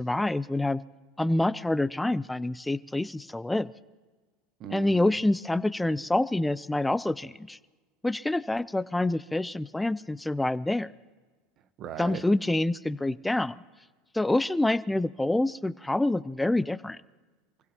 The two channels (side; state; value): both; normal; correlation 0.98